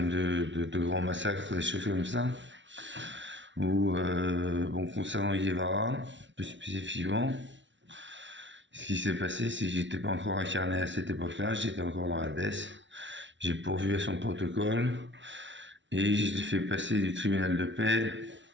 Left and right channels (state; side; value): late; left; 0.54 ms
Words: de grands massacres, des choses comme ça. Ou, bon, concernant Guevara, plus spécifiquement, ce qui s'est passé, c'est que j'étais pas encore incarné à cette époque-là, j'étais encore dans la DES. J'ai pourvu à son protocole et je l'ai fait passer du tribunal de paix,